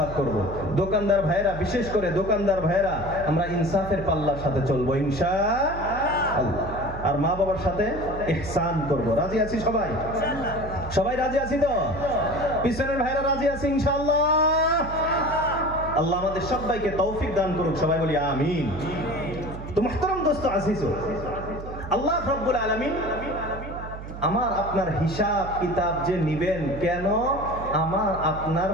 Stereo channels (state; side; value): noise; right; hum, 11 dB below the sound